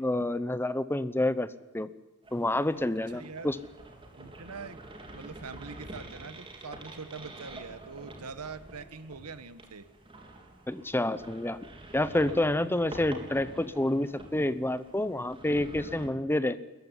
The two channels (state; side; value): normal; both; correlation 0.80